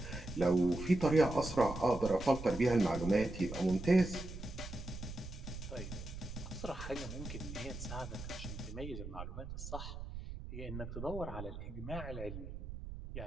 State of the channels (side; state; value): right; noise; rumble, 9 dB below the sound